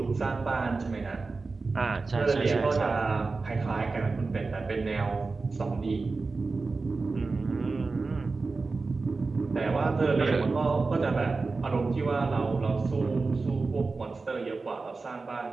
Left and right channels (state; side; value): quieter; left; 4.0 dB